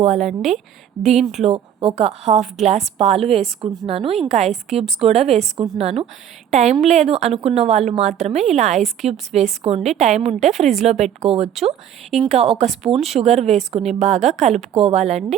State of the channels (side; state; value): left; quieter; 9.7 dB